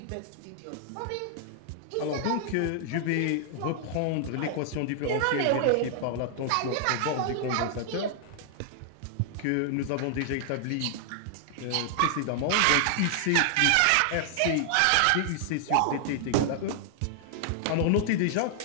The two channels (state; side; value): different; both; correlation 0.00